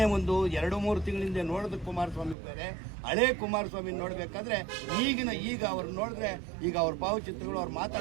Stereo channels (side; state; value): left; drops out; at 2.4 s